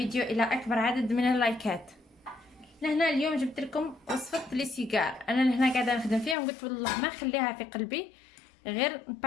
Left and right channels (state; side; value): drops out; right; at 6.4 s